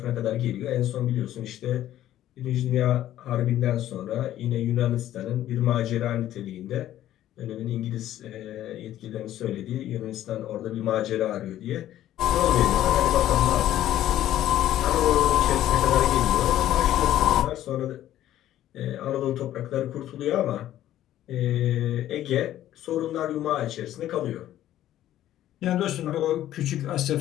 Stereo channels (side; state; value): right; quieter; 12.8 dB